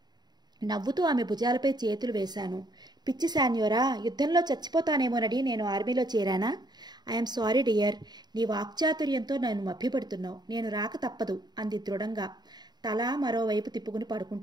నవ్వుతూ ఆమె భుజాలపై చేతులు వేశాను. పిచ్చి శాన్యోరా, యుద్ధంలో చచ్చిపోతానేమోనని నేను ఆర్మీలో చేరానా? I'm sorry dear. నీ వాక్చాతుర్యంతో నన్ను మభ్యపెడుతున్నావు. నేను రాక తప్పదు అంది దృఢంగా, తల మరోవైపు తిప్పుకుని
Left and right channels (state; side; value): late; left; 0.20 ms